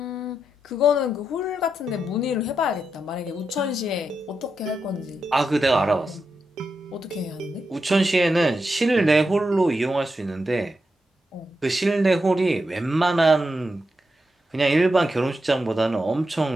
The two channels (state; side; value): normal; both; correlation 0.86